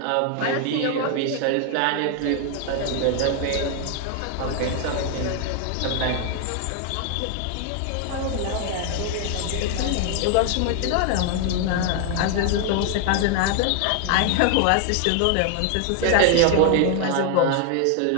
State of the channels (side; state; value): both; different; correlation 0.00